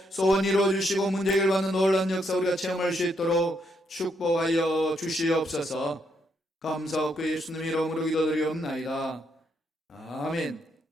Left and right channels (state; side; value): normal; both; correlation 0.76